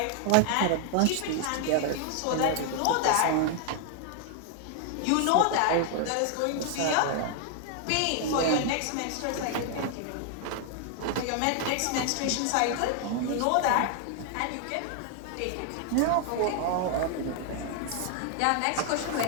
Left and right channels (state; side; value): different; both; correlation 0.00